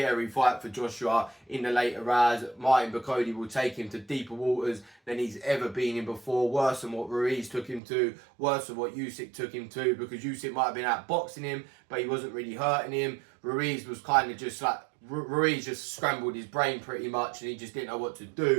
fight for Joshua in the later rounds. Martin Bakole will take him to deeper waters than he's ever been in before, worse than what Ruiz took him to, worse than what Usyk took him to, because Usyk might have been outboxing him, but he wasn't really hurting him. Ruiz was kind of just like, Ruiz just scrambled his brain pretty much, and he just didn't know what to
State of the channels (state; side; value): drops out; left; at 7.8 s